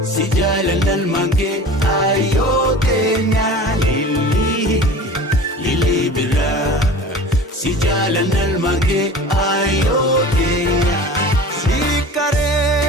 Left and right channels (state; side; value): normal; both; correlation 0.38